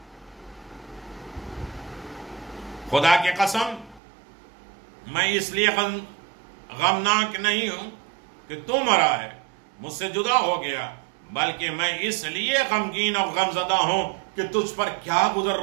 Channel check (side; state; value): left; drops out; at 4.0 s